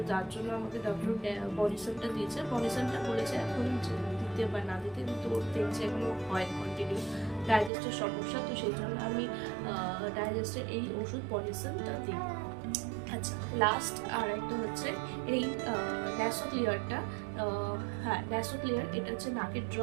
যার জন্য আমাকে ডক্টর বানিসানটা দিয়েছে। বানিসানটা বলেছে এখন দিতে বা না দিতে, কিন্তু দেখছে এখনো হয় কন্টিনিউ ডাইজেস্টের সমস্যা, তো সেই জন্য আমি ডাইজেস্টের এই ওষুধ বানিসানটা দিই। আচ্ছা, লাস্ট আর একটা হচ্ছে এই ন্যাসোক্লিয়ারটা। হ্যাঁ, ন্যাসোক্লিয়ার, এটা হচ্ছে নাকের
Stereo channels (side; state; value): left; drops out; at 7.7 s